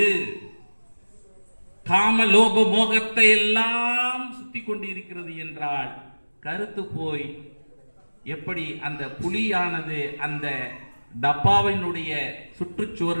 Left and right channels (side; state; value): both; inverted; correlation -1.00